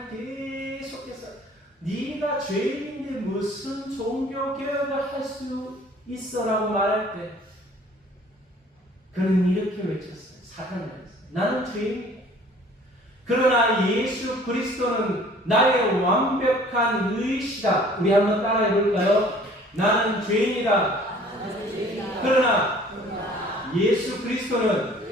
계속해서 네가 죄인인데 무슨 종교개혁을 할 수 있어라고 말할 때 그는 이렇게 외쳤어요. 사탄이 외쳤어요. 나는 죄인이다. 그러나 예수 그리스도는 나의 완벽한 의시다. 우리 한번 따라해 볼까요? 나는 죄인이다. 그러나 예수 그리스도는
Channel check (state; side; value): normal; both; correlation 0.52